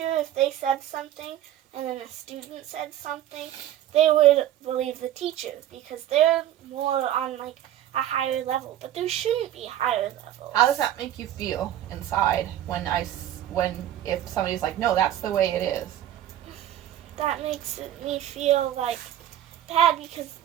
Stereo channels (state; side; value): quieter; left; 12.1 dB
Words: if they said something and then a student said something, they would believe the teacher because they're more on like a higher level. But there shouldn't be higher levels. How does that make you feel inside if somebody's like, no, that's the way it is? That makes me feel like bad because